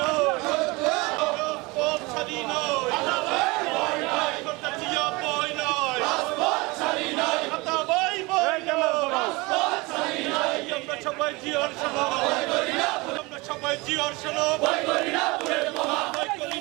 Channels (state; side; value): quieter; left; 24.5 dB